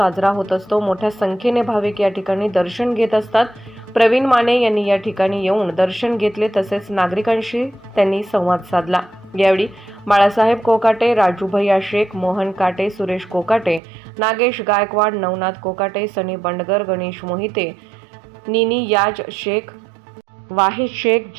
होत असतो। मोठ्या संख्येने भाविक या ठिकाणी दर्शन घेत असतात। प्रवीण माने यांनी या ठिकाणी येऊन दर्शन घेतले, तसेच नागरिकांशी त्यांनी संवाद साधला। यावेळी बाळासाहेब कोकाटे, राजू भैया शेख, मोहन काटे, सुरेश कोकाटे, नागेश गायकवाड, नवनाथ कोकाटे, सनी बंडगर, गणेश मोहिते, निनी याज शेख, वाहिद शेख,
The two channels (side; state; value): left; drops out; at 13.8 s